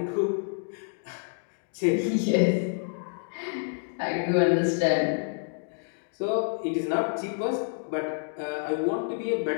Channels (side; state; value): right; silent; digital silence